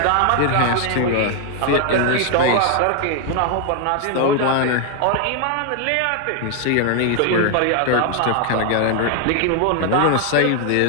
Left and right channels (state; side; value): different; both; correlation 0.00